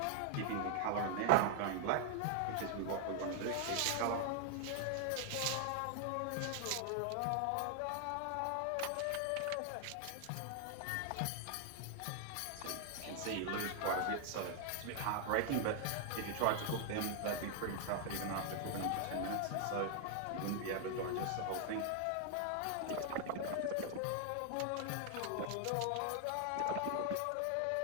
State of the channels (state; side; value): different; both; correlation 0.00